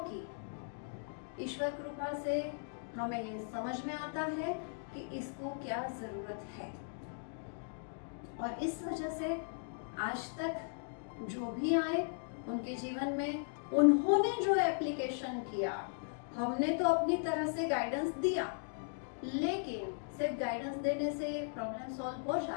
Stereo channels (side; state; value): right; silent; digital silence